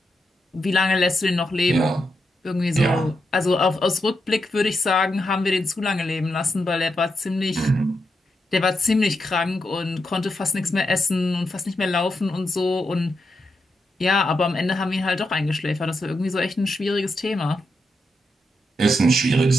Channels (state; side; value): normal; both; correlation 0.84